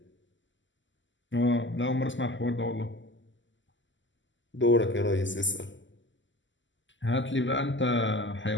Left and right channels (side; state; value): right; late; 0.54 ms